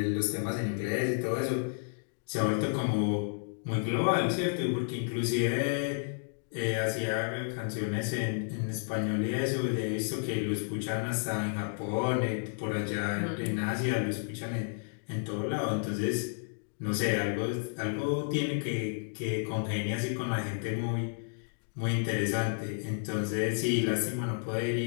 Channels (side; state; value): right; silent; digital silence